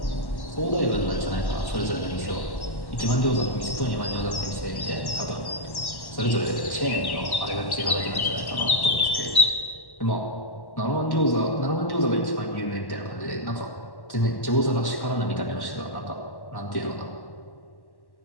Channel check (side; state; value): right; late; 1.1 ms